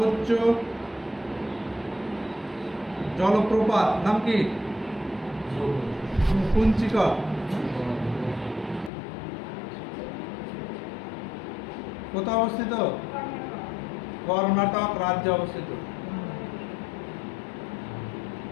জলপ্রপাত নাম কি? কুঞ্চিকল। কোথায় অবস্থিত? কর্ণাটক রাজ্যে অবস্থিত।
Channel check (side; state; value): right; drops out; at 8.9 s